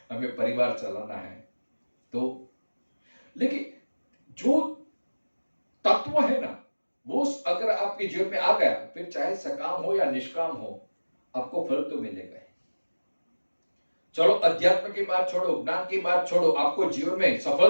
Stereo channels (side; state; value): both; inverted; correlation -1.00